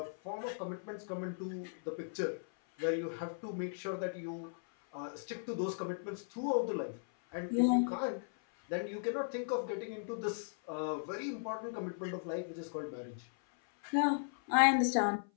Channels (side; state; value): right; silent; 53 dB below the other